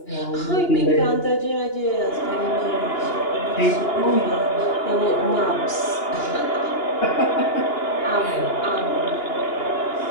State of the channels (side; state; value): right; late; 2.9 ms